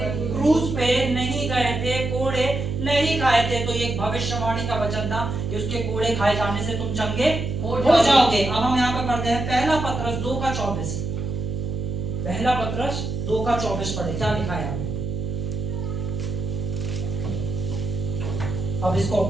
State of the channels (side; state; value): right; noise; hum, 3 dB below the sound